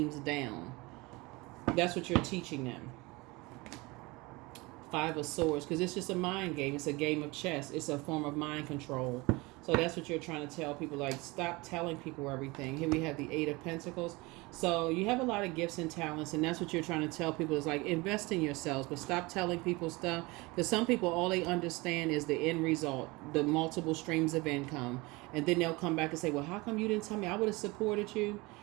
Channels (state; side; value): quieter; left; 23.9 dB